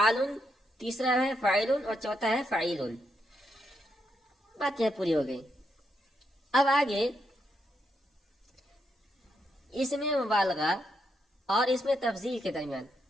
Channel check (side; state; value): both; normal; correlation 0.80